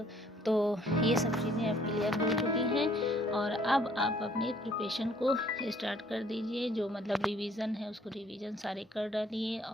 तो ये सब चीज़ें अब क्लियर हो चुकी हैं, और अब आप अपने प्रिपरेशन को स्टार्ट कर दीजिए। जो मतलब रिवीज़न है उसको रिवीज़न सारे कर डालिए,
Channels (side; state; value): both; normal; correlation 0.62